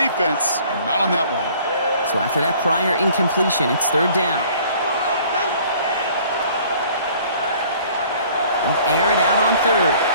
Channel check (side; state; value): both; inverted; correlation -0.54